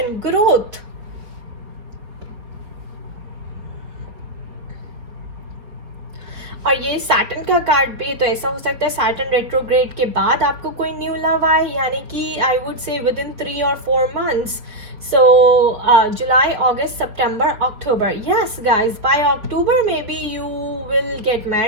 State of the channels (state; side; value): late; left; 4.1 ms